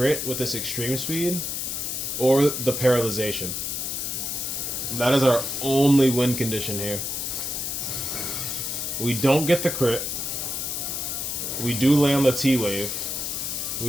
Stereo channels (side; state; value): left; noise; hiss, 3 dB below the sound